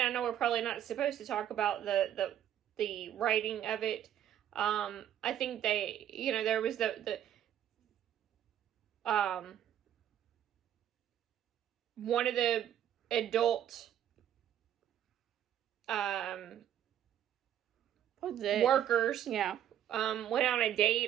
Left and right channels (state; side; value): quieter; left; 10.7 dB